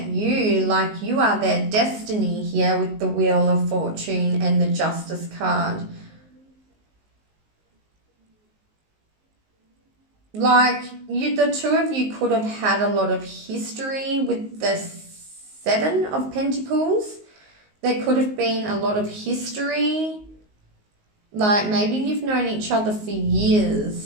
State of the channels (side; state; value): left; late; 19 ms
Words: you like you are their destiny here with the Wheel of Fortune and the Justice card. Like the two of you could have had a lot of history with the 7 of Pentacles. There could have been a lot of history. Like maybe you've known each other for years